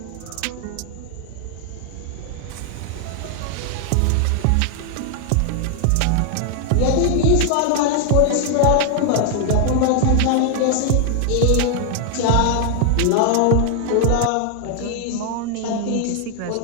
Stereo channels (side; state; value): both; different; correlation 0.00